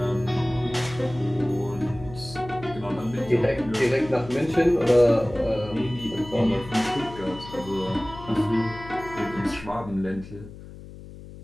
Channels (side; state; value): left; noise; hum, 15 dB below the sound